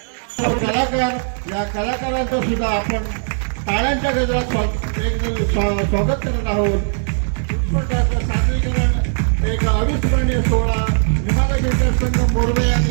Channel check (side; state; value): left; silent; digital silence